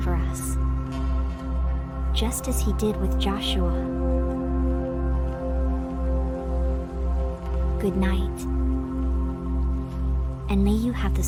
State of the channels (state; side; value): identical; both; correlation 1.00